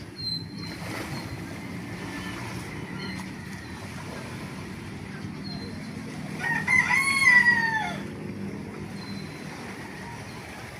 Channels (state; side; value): identical; both; correlation 1.00